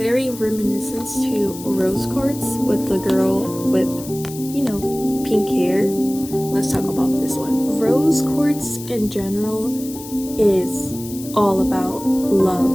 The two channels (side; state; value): left; noise; hiss, 14 dB below the sound